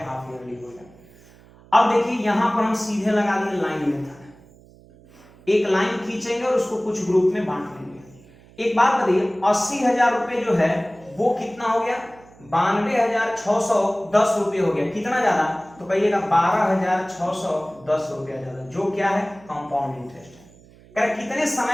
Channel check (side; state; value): right; noise; hum, 25 dB below the sound